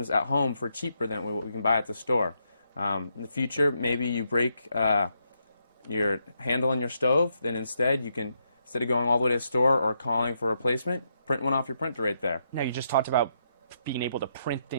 at home for cheaper than what we can buy at the store. In the future, maybe you break your handle on your stove, then instead of going all the way to the store or calling for a replacement, print one off your printer right there. Now, you just talked about being able to print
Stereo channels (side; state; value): both; inverted; correlation -0.79